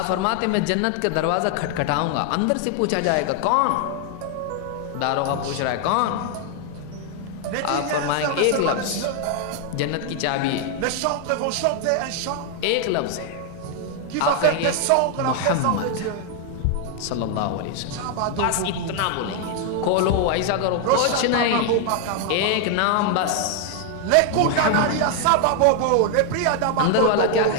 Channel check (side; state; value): both; different; correlation 0.00